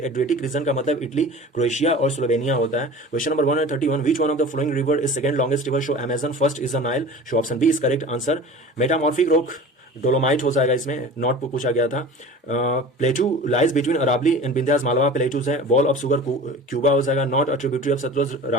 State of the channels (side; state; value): both; normal; correlation 0.38